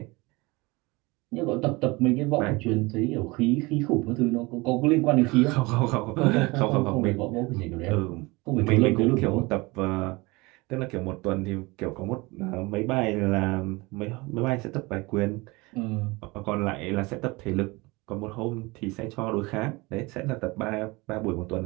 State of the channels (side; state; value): left; quieter; 23.9 dB